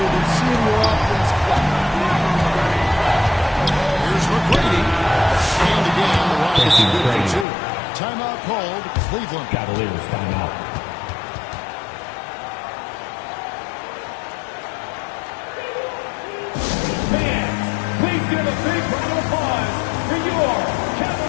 than seeing your offense clap. Here's McGrady. And again, the Rockets are good for 2. Timeout called. Cleveland. Cavaliers timeout. Fans, please give a big round of applause for your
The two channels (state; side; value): drops out; right; at 7.5 s